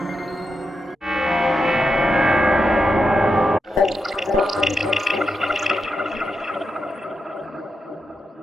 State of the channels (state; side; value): normal; both; correlation 0.86